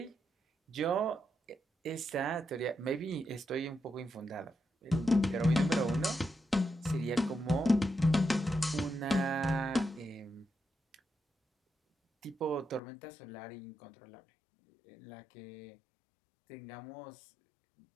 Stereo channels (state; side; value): drops out; right; at 12.8 s